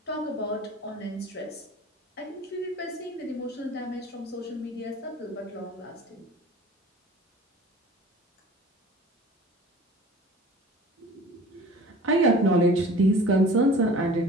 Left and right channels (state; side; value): normal; both; correlation 0.43